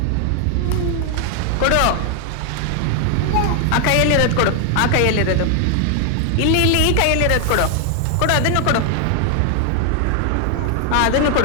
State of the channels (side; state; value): both; different; correlation 0.00